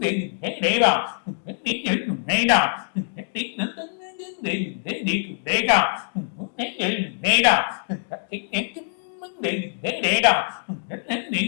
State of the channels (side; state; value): right; silent; digital silence